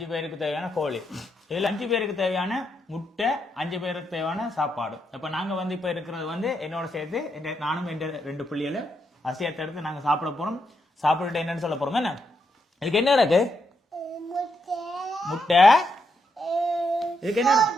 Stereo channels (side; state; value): both; normal; correlation 0.80